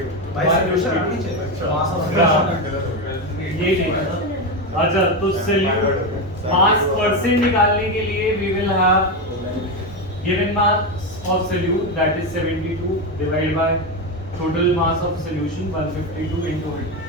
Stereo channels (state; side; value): normal; both; correlation 0.12